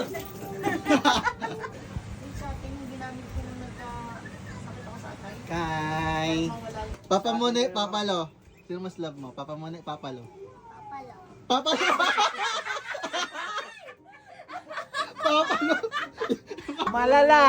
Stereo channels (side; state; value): both; identical; correlation 1.00